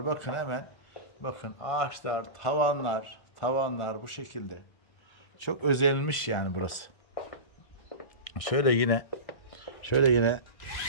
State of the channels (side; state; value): right; late; 1.4 ms